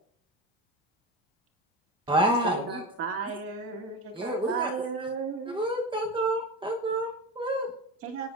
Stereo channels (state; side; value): normal; both; correlation 0.24